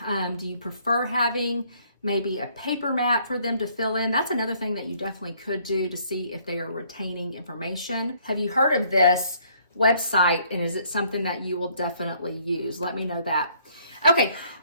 Do you prefer having maybe a paper map for them to fill in? That's another thing that you definitely could do to see if they are retaining information. Have you heard of this website and is it something that you will definitely use? Let me know that. Okay,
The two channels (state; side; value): inverted; both; correlation -0.64